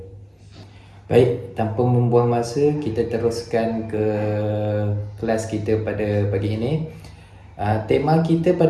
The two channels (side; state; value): both; identical; correlation 1.00